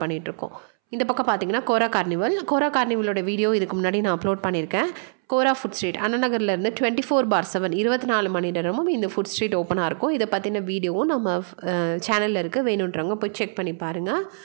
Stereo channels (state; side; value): silent; left; 63 dB below the other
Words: பண்ணிகிட்ருக்கோம். இந்த பக்கம் பார்த்தீங்கன்னா கோரா கார்னிவலோட வீடியோ இதுக்கு முன்னாடி நான் அப்லோட் பண்ணியிருக்கேன். கோரா ஃபுட் ஸ்ட்ரீட் அண்ணநகர்லேருந்து 24/7 24 மணி நேரமும் இந்த ஃபுட் ஸ்ட்ரீட் ஓப்பனாக இருக்கும். இதை பற்றின வீடியோவும் நம்ம சேனலில் இருக்குது, வேணுன்றவங்க போய் செக் பண்ணி பாருங்கள்.